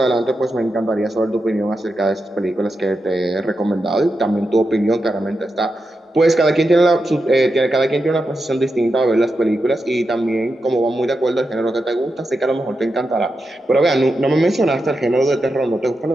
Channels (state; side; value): normal; both; correlation 0.88